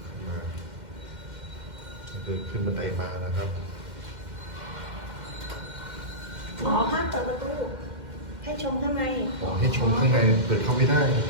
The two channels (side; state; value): left; late; 2.1 ms